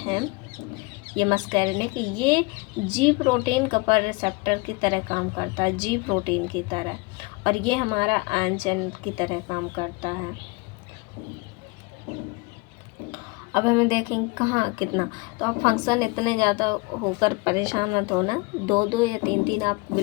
ये मस्कारेनिक ये G प्रोटीन कपर रिसेप्टर की तरह काम करता है, G प्रोटीन की तरह, और ये हमारा आयन चैनल की तरह काम करता है। अब हमें देखेंगे कहाँ कितना, तो आप फंक्शन इतने ज़्यादा होकर परेशान मत होना, 2 या 3 आप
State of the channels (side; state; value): right; quieter; 26.5 dB